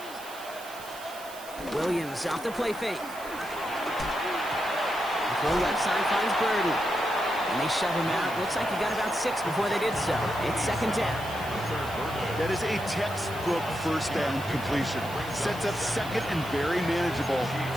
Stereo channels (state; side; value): noise; right; hiss, 16 dB below the sound